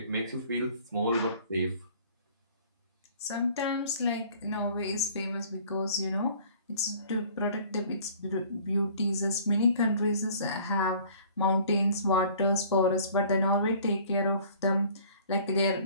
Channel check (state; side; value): inverted; both; correlation -0.52